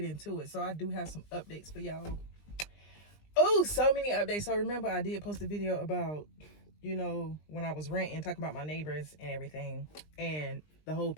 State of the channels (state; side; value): late; right; 20 ms